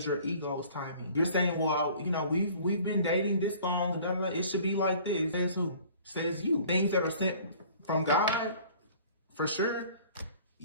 your ego's timing. You're saying, well, you know, we've been dating this long, blah, blah, blah. It should be like this. Says who? Says you. Things that are sent from God, for sure,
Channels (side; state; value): both; inverted; correlation -0.50